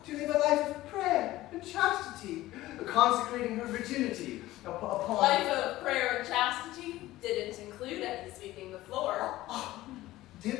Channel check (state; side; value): quieter; right; 16.5 dB